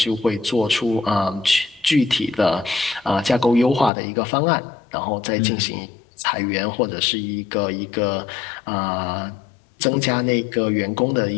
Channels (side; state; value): right; drops out; at 3.9 s